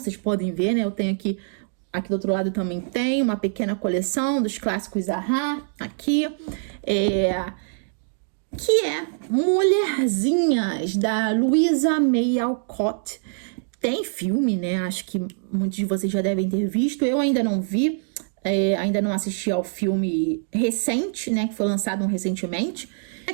podem ver, né? Eu tenho aqui do outro lado também tem uma pequena coleção dos clássicos Zahar, aqui. Que é Mulherzinhas, da Louisa May Alcott. Tem filme, né? Acho que muitos de vocês já devem ter visto. Eu ainda não vi, ainda não assisti ao filme recente, né? Que foi lançado recentemente.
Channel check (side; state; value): left; silent; digital silence